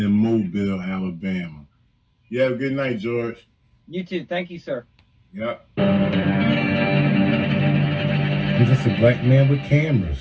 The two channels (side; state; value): both; identical; correlation 1.00